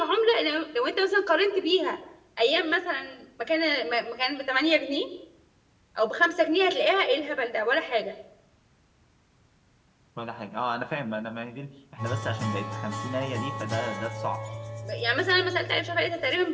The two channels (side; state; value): both; identical; correlation 1.00